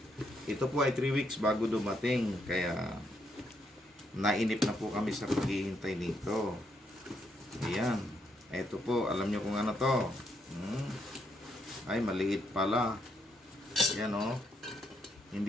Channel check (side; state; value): both; normal; correlation 0.77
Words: Ito po ay 3 weeks bago dumating. Kaya nainip na po kami sa paghihintay nito. Ayan. Ito po, alam nyo kung ano to. Ay, maliit pala. Yan o.